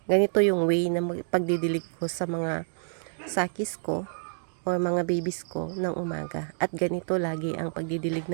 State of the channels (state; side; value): silent; left; digital silence